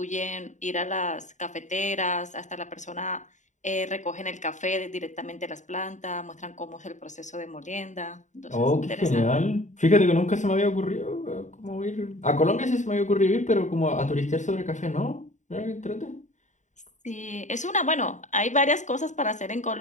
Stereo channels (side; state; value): right; late; 0.35 ms